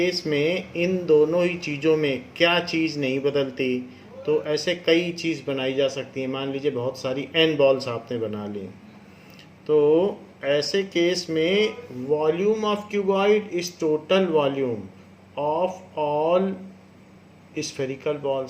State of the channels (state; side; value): identical; both; correlation 1.00